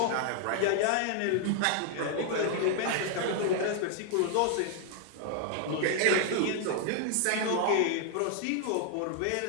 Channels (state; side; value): different; both; correlation 0.00